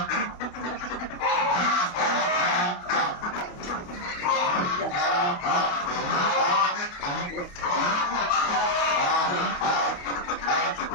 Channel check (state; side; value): late; right; 28 ms